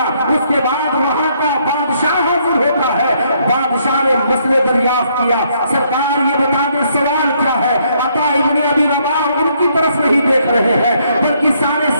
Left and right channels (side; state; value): both; inverted; correlation -0.70